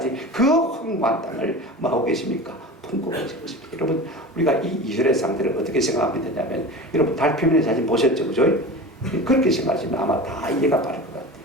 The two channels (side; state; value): both; normal; correlation 0.33